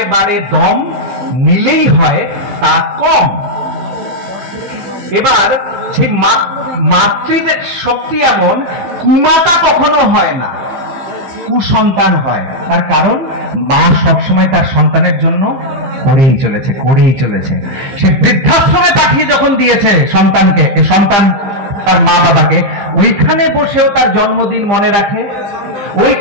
বাড়ে দম, নিলেই হয় তা কম। এবার সেই মাতৃদের শক্তি এমন, কুমাতা কখনো হয় না, কুসন্তান হয়। তার কারণ মা সবসময় তার সন্তানের জন্য করেই চলেছে। সে বৃদ্ধাশ্রমে পাঠিয়ে যখন দিয়েছে সন্তানকে, সন্তান তার মা বাবাকে, ওইখানে বসেও তার জন্মদিন মনে রাখে,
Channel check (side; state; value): left; late; 15 ms